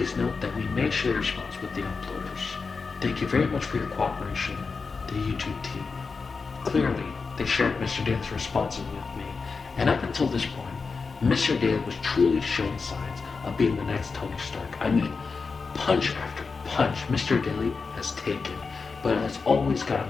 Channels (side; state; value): right; quieter; 4.7 dB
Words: note that we may share your response with the uploaders. Thank you very much for your cooperation, the YouTube team. Clearly, they shared Mr. Daly's responses with me, and up until this point, Mr. Daly was truly showing signs of being the next Tony Stark. I mean, punch after punch Mr. Daly has taken, but has always